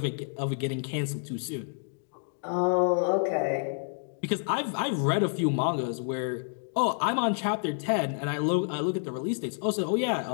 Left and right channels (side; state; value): right; silent; digital silence